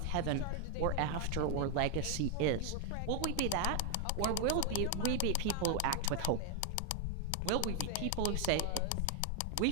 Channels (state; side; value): different; both; correlation 0.00